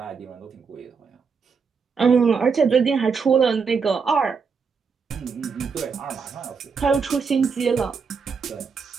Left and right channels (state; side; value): quieter; left; 5.5 dB